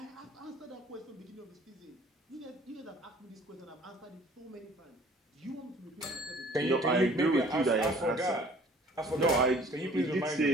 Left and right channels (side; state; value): both; normal; correlation 0.53